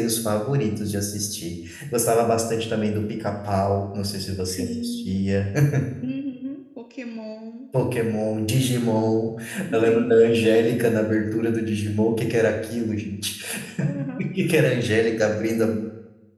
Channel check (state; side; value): identical; both; correlation 1.00